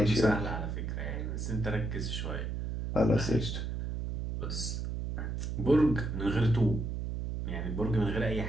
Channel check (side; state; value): right; noise; hum, 3 dB below the sound